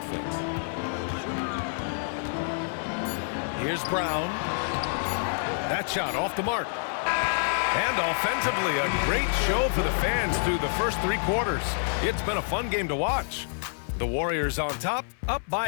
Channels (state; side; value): silent; right; digital silence